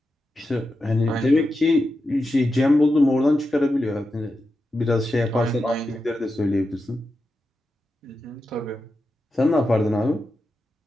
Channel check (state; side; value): normal; both; correlation 0.89